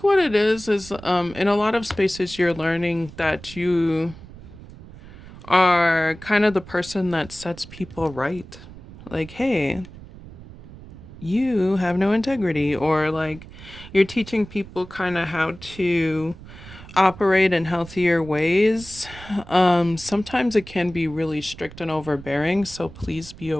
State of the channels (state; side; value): noise; right; rumble, 17 dB below the sound